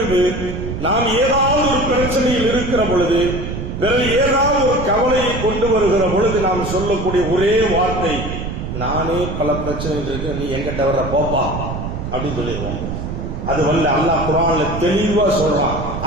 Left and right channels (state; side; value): noise; right; rumble, 6 dB below the sound